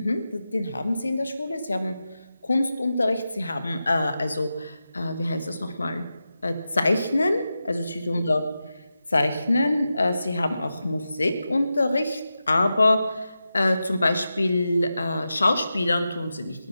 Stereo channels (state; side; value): inverted; both; correlation -0.91